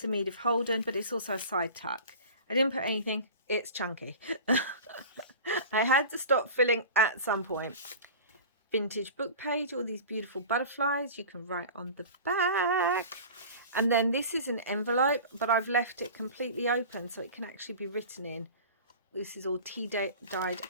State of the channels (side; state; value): both; inverted; correlation -0.37